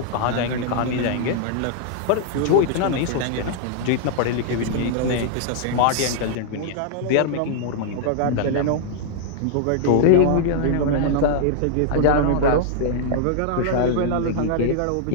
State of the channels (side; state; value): both; different; correlation -0.01